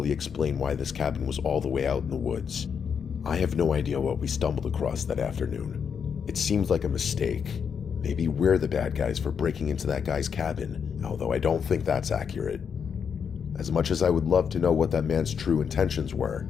explain why this cabin was all the way out in the woods. I have no idea what we stumbled across that afternoon. It seems like a mistake. Maybe we're the bad guys for breaking into that guy's cabin, although I don't think that's accurate. As much as I would love to know what that man's true intentions were,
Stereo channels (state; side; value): quieter; right; 6.9 dB